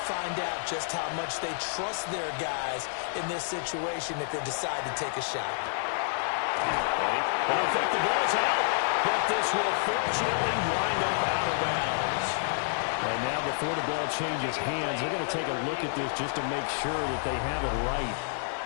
find out just how much they trust their guys in this situation if they decide to take a shot. And I think the ball's out, but this will fortunately wind up out of bounds. And now before the ball changes hands, they're going to take a look at this just to make sure that they have it right.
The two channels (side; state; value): right; silent; digital silence